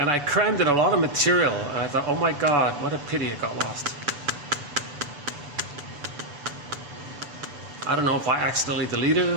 I crammed in a lot of material, and I thought, oh my God, what a pity it got lost. I don't know if I accidentally deleted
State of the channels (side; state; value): left; late; 6.9 ms